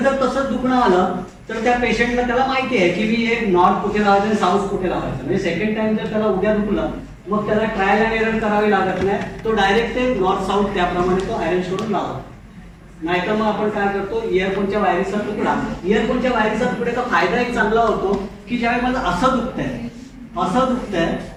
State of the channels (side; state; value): both; identical; correlation 1.00